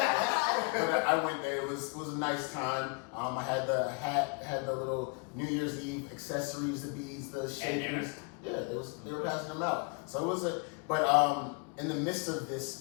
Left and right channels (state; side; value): quieter; right; 35.3 dB